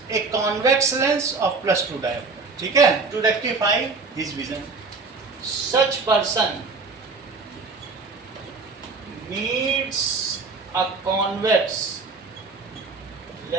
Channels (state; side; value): quieter; left; 4.1 dB